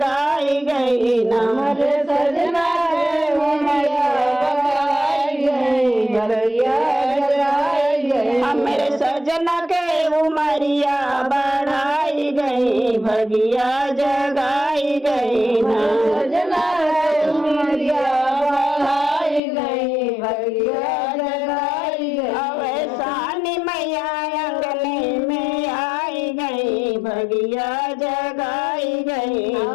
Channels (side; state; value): right; drops out; at 19.4 s